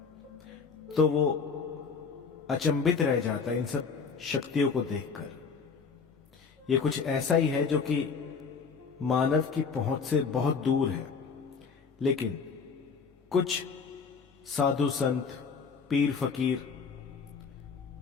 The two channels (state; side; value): quieter; right; 5.5 dB